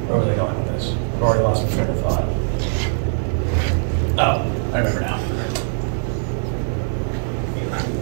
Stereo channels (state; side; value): silent; left; digital silence